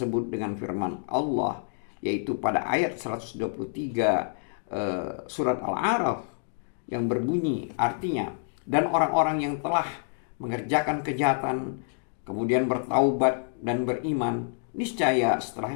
dengan firman Allah, yaitu pada ayat 123 surat Al-A'raf yang berbunyi artinya, dan orang-orang yang telah mengerjakan kejahatan kemudian bertaubat dan beriman, niscaya setelah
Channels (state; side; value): silent; right; digital silence